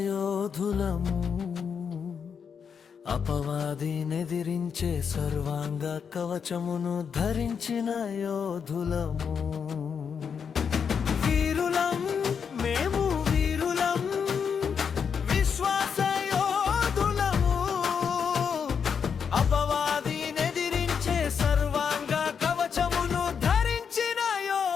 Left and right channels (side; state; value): right; quieter; 6.7 dB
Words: అపవాదినెదిరించే సర్వాంగ కవచమును ధరించిన యోధులము. వీరులం మేము, వీరులం విశ్వాసయోధులము, అపవాదినెదిరించే సర్వాంగ కవచమును ధరించిన